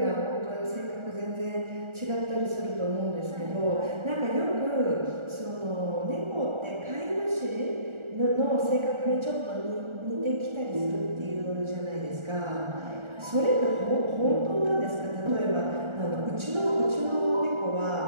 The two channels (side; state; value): left; late; 1.4 ms